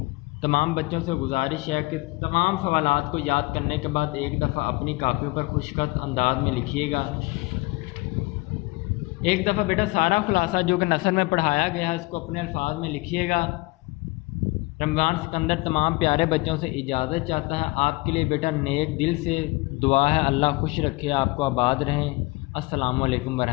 تمام بچوں سے گزارش ہے کہ تمام سوالات کو یاد کرنے کے بعد ایک دفعہ اپنی کاپیوں پر خوشخط انداز میں لکھیے گا۔ ایک دفعہ بیٹا سارا خلاصہ جو کہ نثر میں پڑھایا گیا ہے اس کو اپنے الفاظ میں لکھیے گا۔ رمضان سکندر تمام پیارے بچوں سے اجازت چاہتا ہے۔ آپ کے لیے بیٹا نیک دل سے دعا ہے، اللہ خوش رکھے، آپ کو آباد رہیں۔ السلام علیکم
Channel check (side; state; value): right; quieter; 23.2 dB